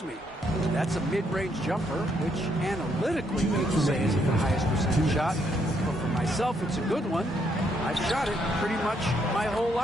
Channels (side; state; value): both; normal; correlation 0.74